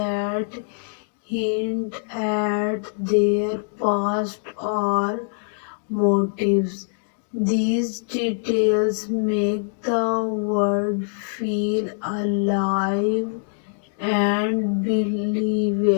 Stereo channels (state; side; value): silent; right; digital silence